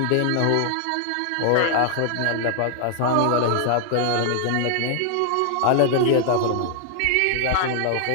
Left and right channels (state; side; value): different; both; correlation 0.00